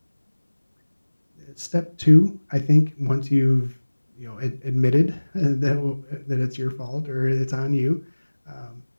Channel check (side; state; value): both; inverted; correlation -1.00